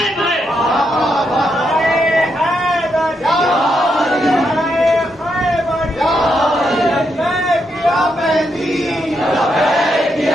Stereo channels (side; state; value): both; normal; correlation 0.80